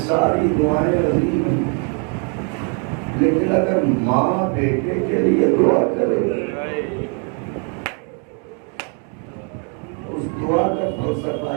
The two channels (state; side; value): quieter; left; 39.0 dB